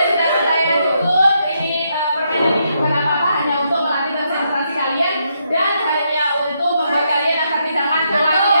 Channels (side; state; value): both; inverted; correlation -0.78